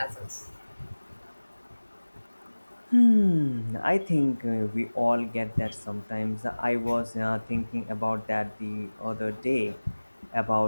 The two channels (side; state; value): both; inverted; correlation -1.00